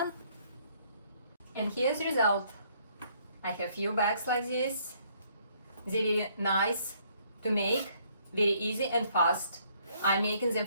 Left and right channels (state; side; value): inverted; both; correlation -0.65